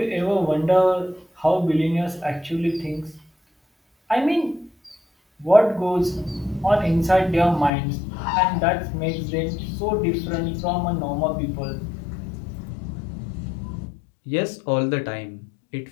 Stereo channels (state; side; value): drops out; right; at 7.7 s